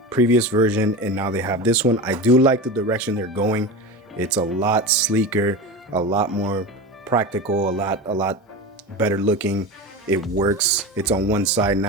previous version, and now they have this one. I do like the direction they're going. It's a lot sleeker, a lot more practical, a lot better looking. It works. It's on one side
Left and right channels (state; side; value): normal; both; correlation 0.26